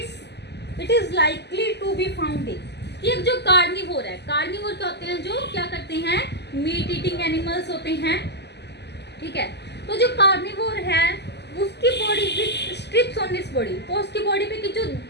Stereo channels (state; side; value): late; right; 0.50 ms